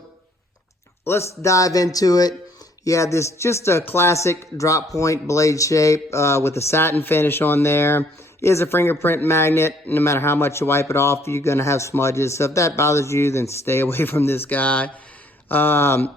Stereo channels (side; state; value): both; normal; correlation 0.63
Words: let's dive into it. Yeah, this just a classic drop point blade shape with a satin finish on there. It is a fingerprint magnet. No matter how much you wipe it off, you're going to have smudges. So if that bothers you, then stay away from this guy.